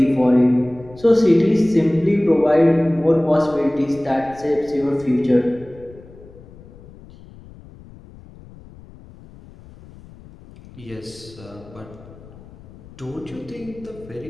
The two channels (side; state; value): left; noise; rumble, 21 dB below the sound